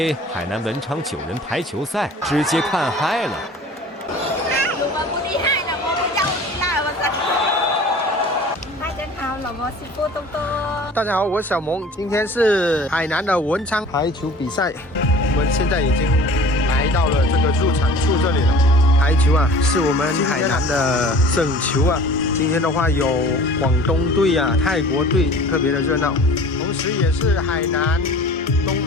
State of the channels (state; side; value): normal; both; correlation 0.44